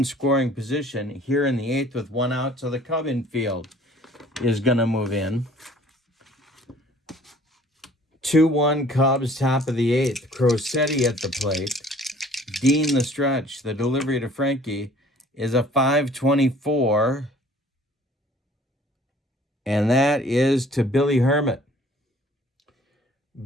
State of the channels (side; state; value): both; normal; correlation 0.54